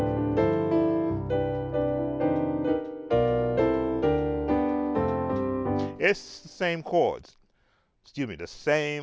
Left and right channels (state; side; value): identical; both; correlation 1.00